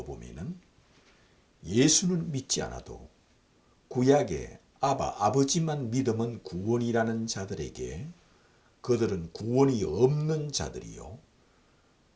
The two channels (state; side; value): identical; both; correlation 1.00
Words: 예수는 믿지 않아도 구약의 아버지만 믿으면 구원이라는 자들에게 그들은 구원이 없는 자들이요,